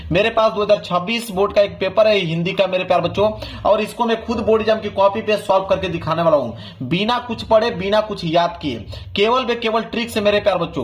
मेरे पास 2026 बोर्ड का एक पेपर है हिंदी का मेरे प्यार बच्चों, और इसको मैं खुद बोर्ड एग्जाम की कॉपी पे सॉल्व करके दिखाने वाला हूं, बिना कुछ पढ़े बिना कुछ याद किए, केवल ट्रिक से मेरे प्यार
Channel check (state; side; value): identical; both; correlation 1.00